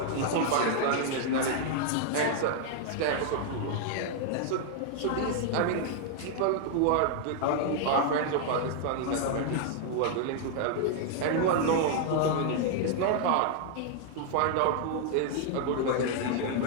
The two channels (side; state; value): both; different; correlation 0.00